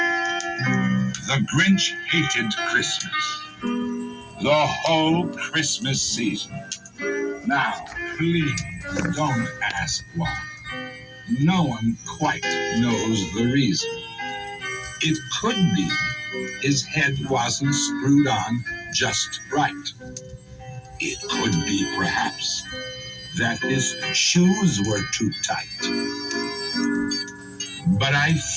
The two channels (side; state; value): both; identical; correlation 1.00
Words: The Grinch hated Christmas, the whole Christmas season. Now, please don't ask why. No one quite knows the reason. It could be his head wasn't screwed on just right. It could be, perhaps, that his shoes were too tight. But I